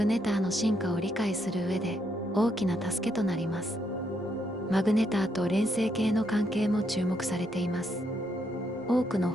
ネターの進化を理解する上で大きな助けとなります。マグネターと連星系の関係も注目されています。多くの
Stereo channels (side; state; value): both; normal; correlation 0.76